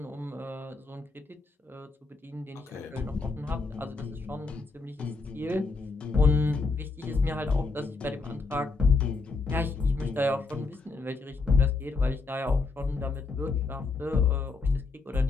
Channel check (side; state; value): right; quieter; 3.9 dB